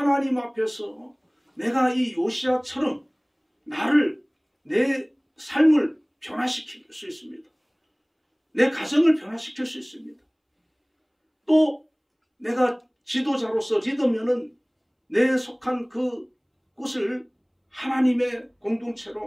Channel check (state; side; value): identical; both; correlation 1.00